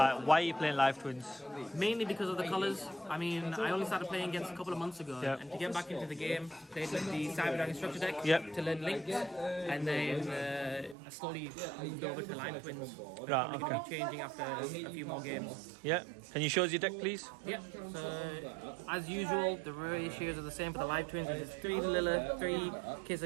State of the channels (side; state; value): left; drops out; at 11.0 s